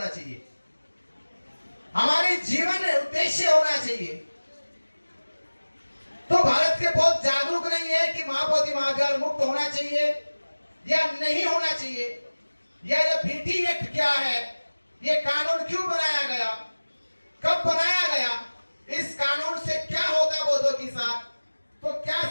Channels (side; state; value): both; inverted; correlation -1.00